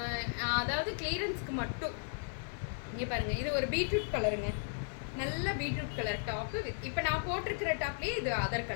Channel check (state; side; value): silent; right; 54 dB below the other